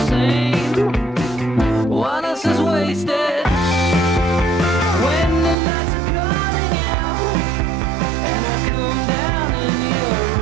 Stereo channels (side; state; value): left; drops out; at 5.6 s